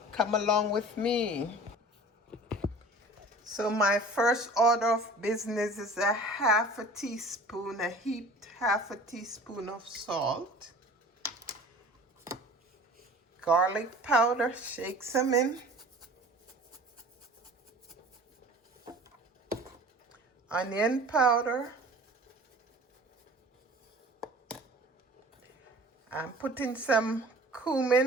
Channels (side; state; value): both; normal; correlation 0.43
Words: Come along with me. So my first order of business is a half a teaspoon, a heaped half a teaspoon of salt, garlic powder, shake some in, onion powder. I'm putting some